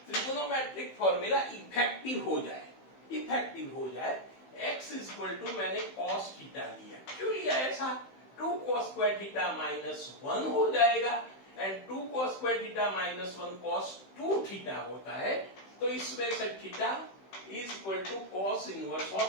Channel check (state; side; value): late; right; 15 ms